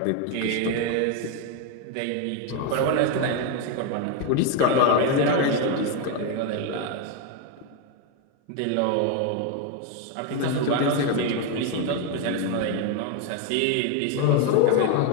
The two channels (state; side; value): different; both; correlation 0.01